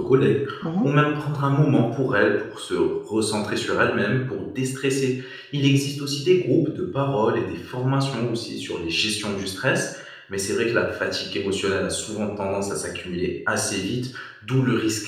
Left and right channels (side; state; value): both; identical; correlation 1.00